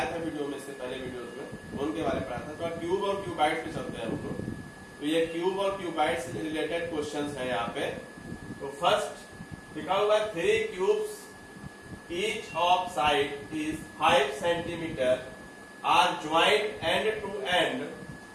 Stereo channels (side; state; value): both; identical; correlation 1.00